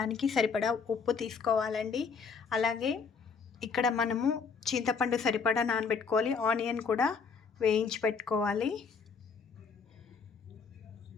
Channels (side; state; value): right; quieter; 5.5 dB